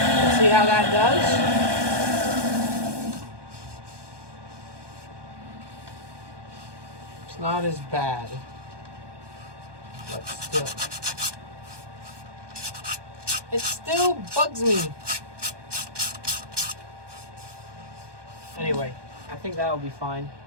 see how that does. It's not as bad, but still, it still bugs me. Anyway, I think that'll be fine,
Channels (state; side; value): late; left; 1.2 ms